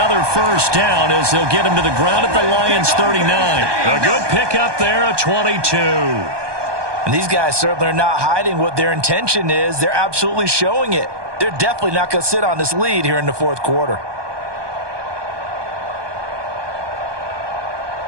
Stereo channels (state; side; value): late; left; 1.2 ms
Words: first down as they'll get him to the ground at the Lions' 39. A good pickup there, a 22. And these guys certainly are not hiding what their intention is. They're absolutely showing it. they're definitely not going to sit on this lead here in the fourth quarter.